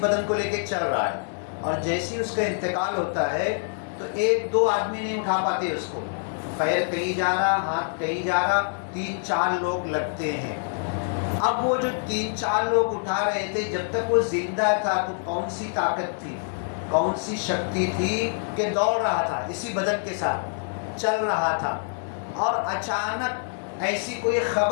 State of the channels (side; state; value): right; silent; 61 dB below the other